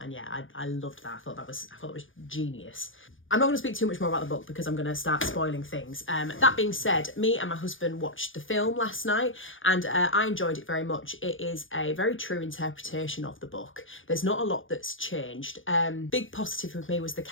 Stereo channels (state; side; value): late; right; 0.58 ms